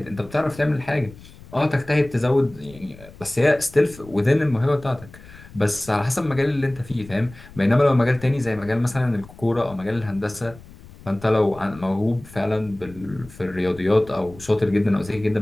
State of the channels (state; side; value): noise; left; rumble, 20 dB below the sound